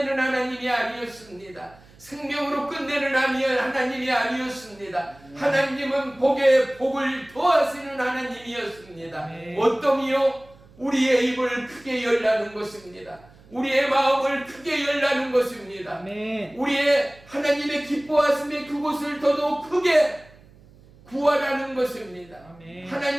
하나님이 아니었습니다. 생명으로 끝내는 하나님이 아니었습니다. 하나님은 복에 복을 더하시는 하나님이었습니다. 어떠미요? 우리의 입을 크게 열라는 것입니다. 우리의 마음을 크게 열라는 것입니다. 우리의 하나님의 기뻐하심의 그곳을 더더욱 크게 구하라는 것입니다.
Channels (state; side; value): noise; right; hum, 25 dB below the sound